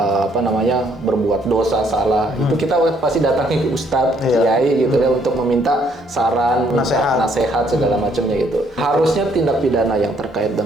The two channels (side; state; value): both; normal; correlation 0.67